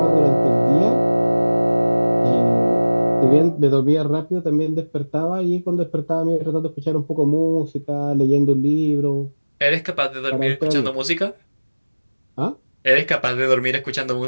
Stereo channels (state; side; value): inverted; both; correlation -1.00